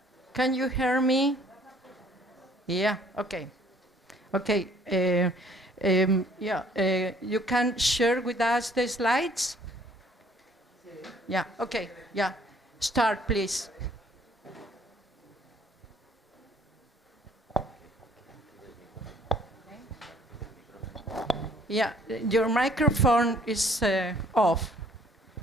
you hear me? Yeah, okay. Okay, you can share with us the slides? Yeah, okay, yeah. Start, please. Yeah, your microphone is off.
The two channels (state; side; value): normal; both; correlation 0.59